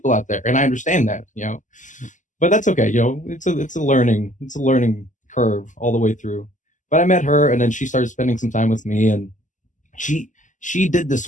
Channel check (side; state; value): right; late; 0.37 ms